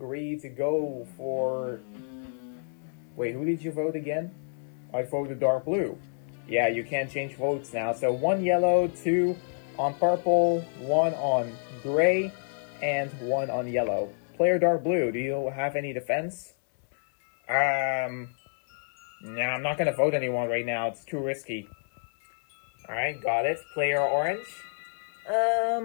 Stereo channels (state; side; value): silent; right; 58 dB below the other